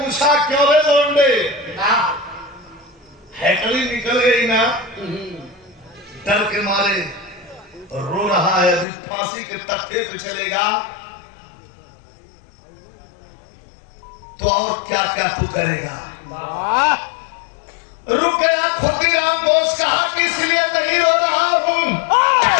क्यों रे लौंडे, हैकली निकल गई ना? डर के मारे रो रहा है। अभी फांसी के तख्ते पे चलेगा तो और क्या क्या तू करेगा? रुक गया खुदीराम बोस, कहा कि इसलिए नहीं रो रहा हूं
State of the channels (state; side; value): drops out; right; at 8.8 s